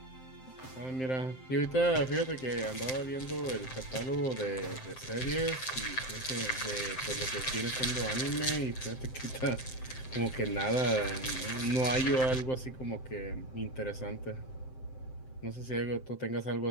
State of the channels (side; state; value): right; late; 7.7 ms